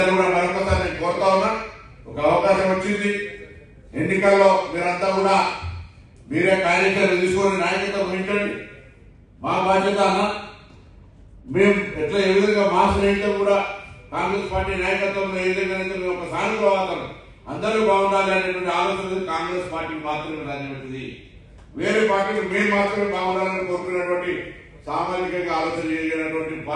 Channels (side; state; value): both; identical; correlation 1.00